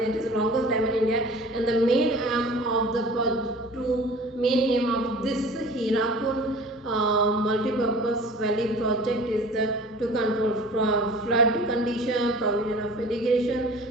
it is the longest dam in India, and the main aim of this Hirakud multi-purpose valley project is to control flood condition, provision of irrigation,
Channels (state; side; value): normal; both; correlation 0.44